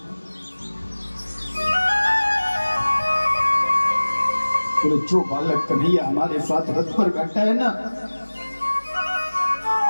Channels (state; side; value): inverted; both; correlation -1.00